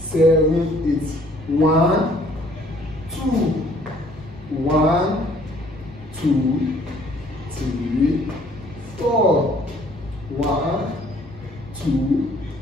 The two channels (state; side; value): normal; both; correlation 0.59